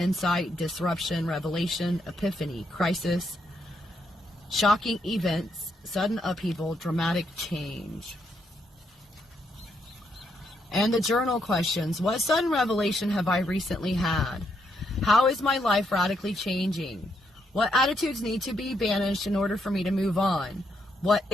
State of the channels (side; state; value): both; normal; correlation 0.77